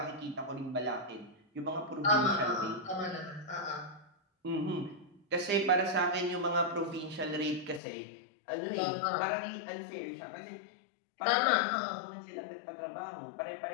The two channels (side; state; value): right; drops out; at 7.8 s